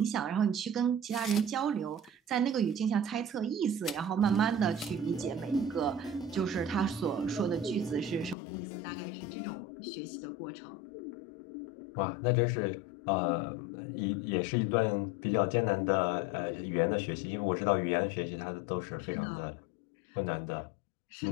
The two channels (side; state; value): right; drops out; at 8.3 s